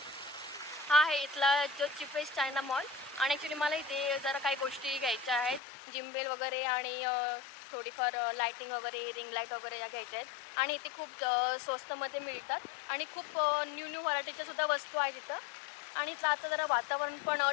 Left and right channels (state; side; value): drops out; right; at 5.6 s